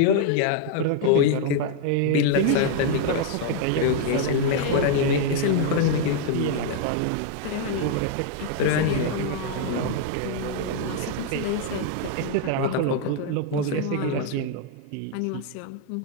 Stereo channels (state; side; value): different; both; correlation 0.00